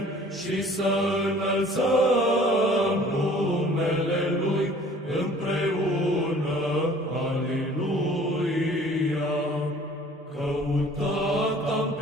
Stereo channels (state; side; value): normal; both; correlation 0.51